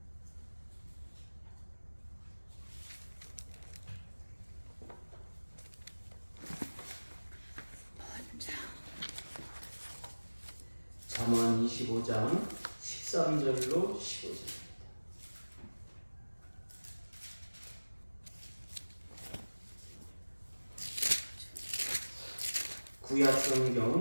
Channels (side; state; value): both; inverted; correlation -1.00